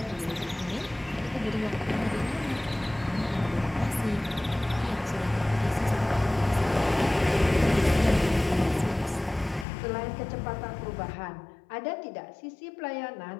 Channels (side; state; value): right; drops out; at 9.7 s